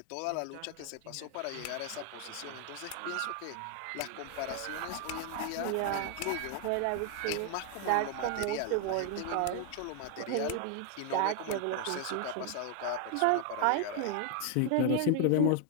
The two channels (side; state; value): both; different; correlation 0.00